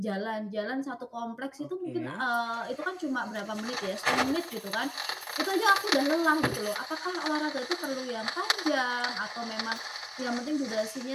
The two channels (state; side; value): identical; both; correlation 1.00